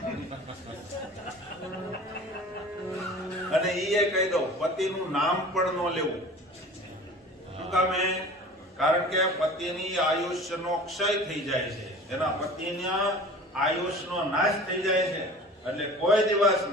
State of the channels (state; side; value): normal; both; correlation 0.41